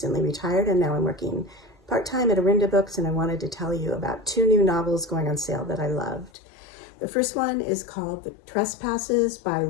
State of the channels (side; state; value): right; drops out; at 6.3 s